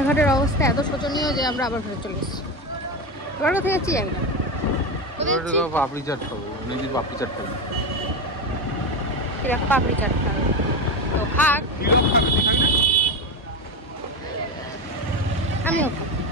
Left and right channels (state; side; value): normal; both; correlation 0.17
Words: অবস্থা এত শোচনীয় যে আমরা আবার ফেরত চলে এসেছি। এবার কোথায় যাচ্ছি জানি না। পাপড়ি চাট খাবো, পাপড়ি চাট খাবো, পাপড়ি চাট খাবো তো খাক, আমিও খাবো।